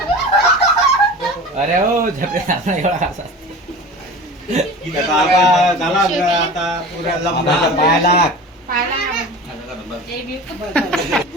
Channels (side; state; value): both; normal; correlation 0.35